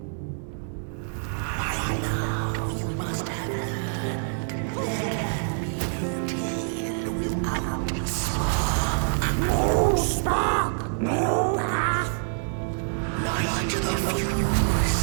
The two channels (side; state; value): left; silent; digital silence